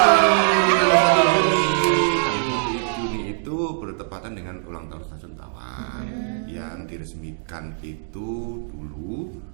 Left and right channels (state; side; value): silent; left; digital silence